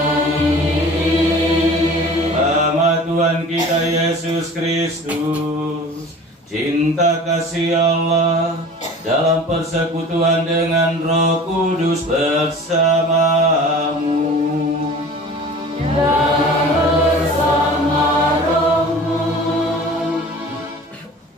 Nama Tuhan kita Yesus Kristus, cinta kasih Allah dalam persekutuan dengan Roh Kudus bersamamu dan bersama rohmu.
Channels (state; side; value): normal; both; correlation 0.42